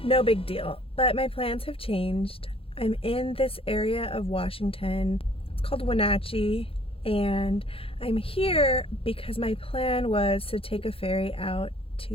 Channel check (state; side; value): late; right; 0.27 ms